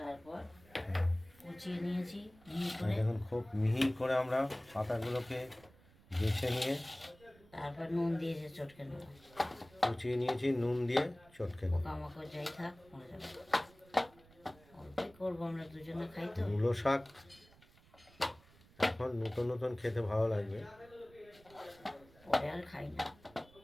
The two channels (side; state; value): right; noise; rumble, 26 dB below the sound